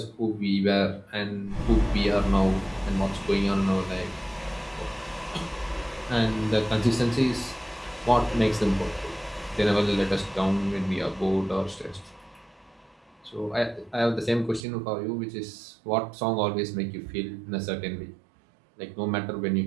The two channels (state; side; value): drops out; left; at 14.7 s